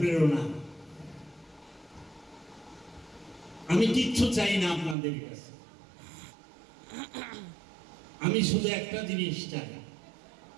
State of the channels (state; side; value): drops out; left; at 5.0 s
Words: আমি কিচ্ছু চাই না আপনাদের কাছে, আমি শুধু একটা জিনিস চাই।